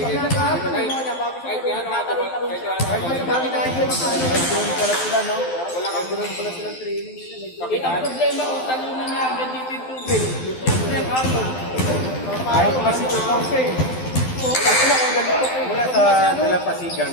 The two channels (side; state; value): right; late; 12 ms